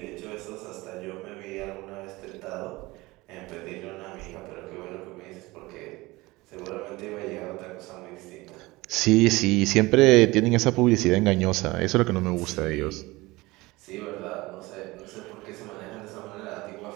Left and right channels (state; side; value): quieter; left; 21.2 dB